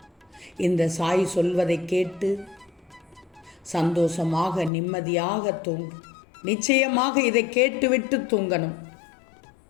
இந்த சாய் சொல்வதை கேட்டு சந்தோஷமாக நிம்மதியாக தூங்கு. நிச்சயமாக இதை கேட்டுவிட்டு தூங்கணும்.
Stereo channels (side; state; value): right; drops out; at 4.7 s